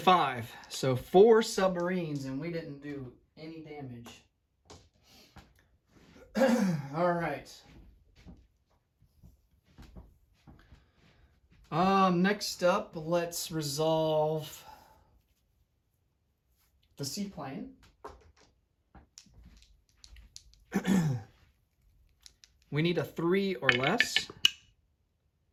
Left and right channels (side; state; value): both; identical; correlation 1.00